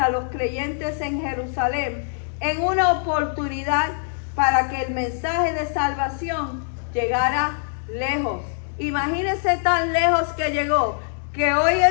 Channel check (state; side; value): silent; right; digital silence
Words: los creyentes en Jerusalén en una oportunidad para que el mensaje de salvación llegara lejos. Imagínense tan lejos que llegó, que hoy